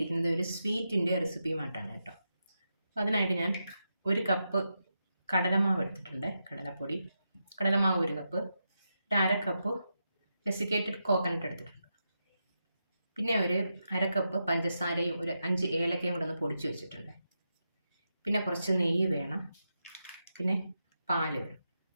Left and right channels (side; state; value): both; inverted; correlation -0.87